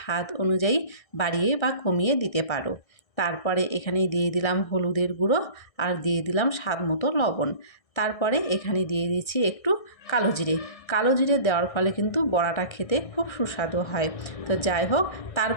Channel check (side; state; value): right; late; 1.6 ms